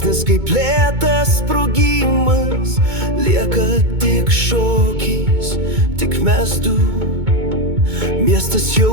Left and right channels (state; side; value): late; left; 2.2 ms